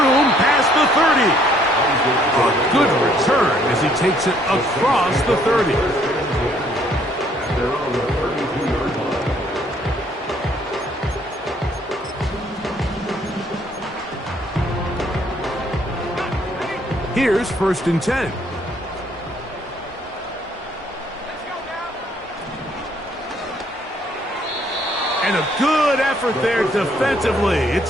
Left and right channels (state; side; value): normal; both; correlation 0.65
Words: past the 30. A good return as he takes it across the 30. Here's 1st and 10. And a good effort there defensively.